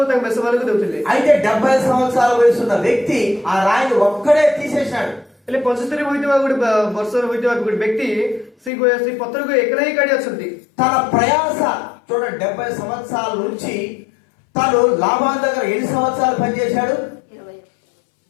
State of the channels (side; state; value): right; drops out; at 8.7 s